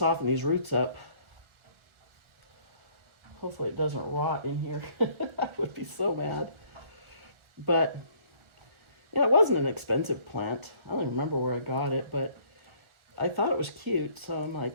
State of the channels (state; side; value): late; left; 1.4 ms